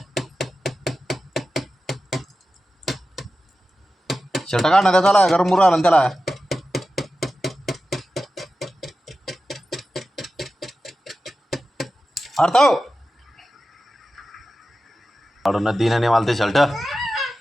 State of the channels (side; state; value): both; normal; correlation 0.93